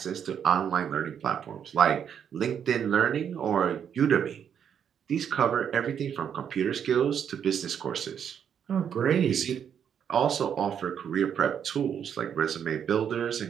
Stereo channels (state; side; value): quieter; left; 8.3 dB